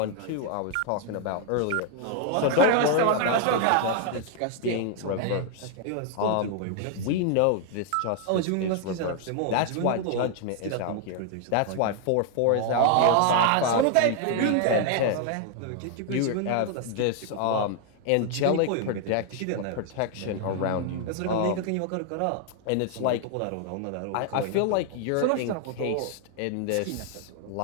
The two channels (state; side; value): different; both; correlation 0.00